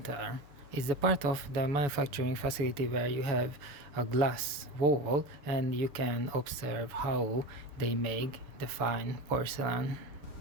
It's the part of the manufacturing facility where you have a glass wall and you can observe how they make the fine porcelain.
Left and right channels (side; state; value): left; late; 7.0 ms